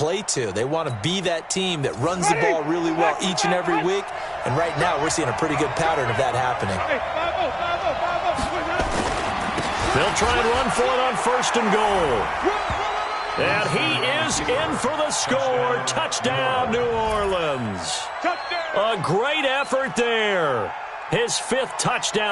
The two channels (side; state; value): both; identical; correlation 1.00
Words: to. They want to be that team that runs the ball really well each and every week, and right now we're seeing a pretty good pattern of that happening. They'll try and run for it on 1st and goal. And he is in for the score. Touchdown, New Orleans. A great effort there. His 5th